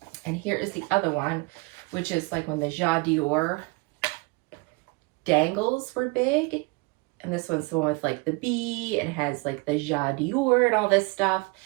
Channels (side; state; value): left; quieter; 27.0 dB